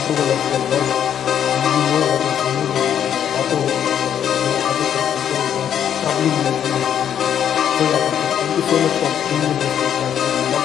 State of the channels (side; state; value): right; quieter; 9.3 dB